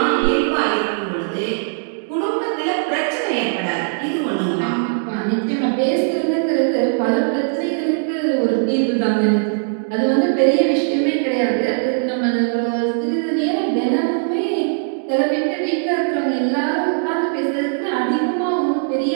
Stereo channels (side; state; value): left; silent; digital silence